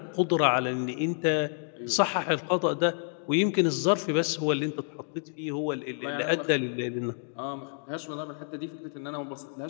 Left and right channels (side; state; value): right; silent; 59 dB below the other